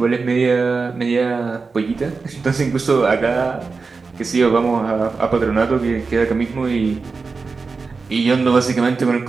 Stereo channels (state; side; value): quieter; left; 4.4 dB